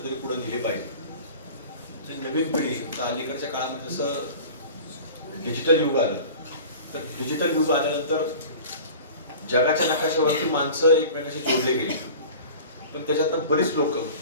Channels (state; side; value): inverted; both; correlation -0.40